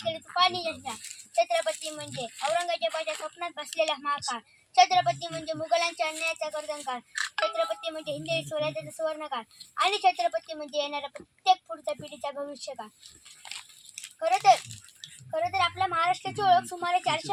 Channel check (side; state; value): both; identical; correlation 1.00